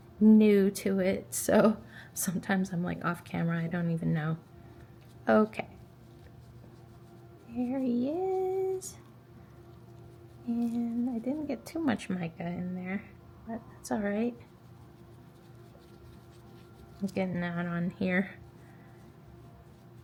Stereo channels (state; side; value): identical; both; correlation 1.00